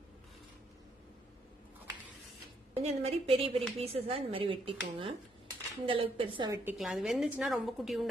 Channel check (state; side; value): normal; both; correlation 0.72